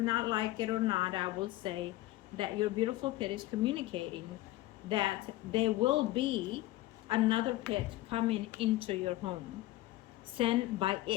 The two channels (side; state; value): right; quieter; 16.8 dB